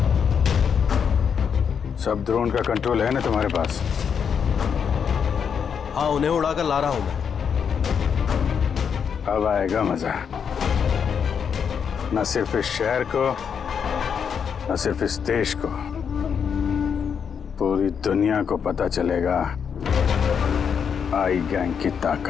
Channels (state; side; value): quieter; right; 7.1 dB